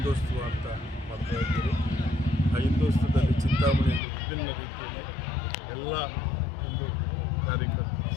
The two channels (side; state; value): right; drops out; at 4.0 s